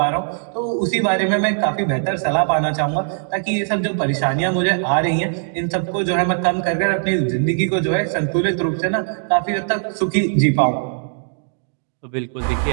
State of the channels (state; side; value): silent; left; digital silence